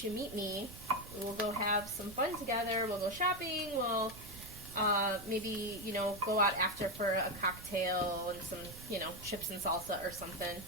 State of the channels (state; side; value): noise; right; rumble, 15 dB below the sound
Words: you meet me? We'll go have some fun together. We'll go shopping. We'll maybe, go out after for a cocktail and some, chips and salsa or something.